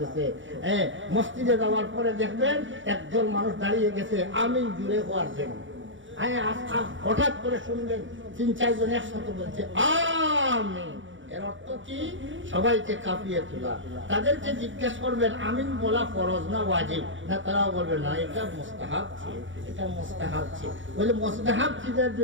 মসজিদে যাওয়ার পরে দেখবেন একজন মানুষ দাঁড়িয়ে গেছে আমিন জুড়ে হওয়ার জন্য। হঠাৎ করে শুনবেন 3-4 জন একসাথে বলছে আমিন। এর অর্থ কি? সবাইকে কাঁপিয়ে তোলা। তাদেরকে জিজ্ঞেস করবেন আমিন বলা ফরজ না ওয়াজিব? না, তারাও বলবেন না, এটা মুস্তাহাব ছিল, এটা মুস্তাহাব ছিল। বলে মুস্তাহাব চিজের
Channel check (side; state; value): left; late; 0.56 ms